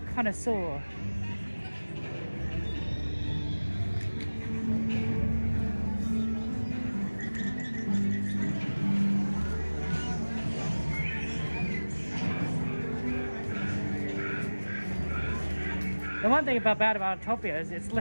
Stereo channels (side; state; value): both; inverted; correlation -1.00